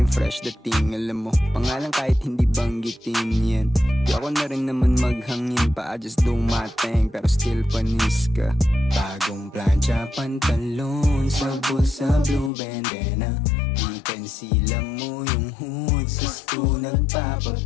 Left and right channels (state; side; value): drops out; right; at 12.5 s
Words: fresh dating. Alam mo, pangalan kahit hindi banggitin yan. Di ako na rin naman maghangin pa, I just do my thing, pero still panis ka. Bagong plancha, pantalon, sa bulsa, blue bandana. Chicken sila mo yung hood, sa sto